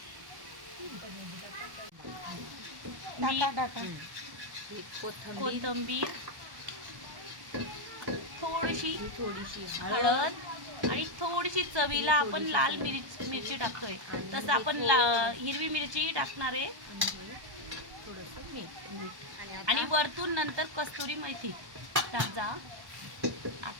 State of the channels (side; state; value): left; late; 1.1 ms